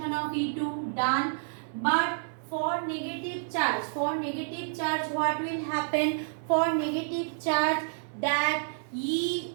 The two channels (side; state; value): left; silent; digital silence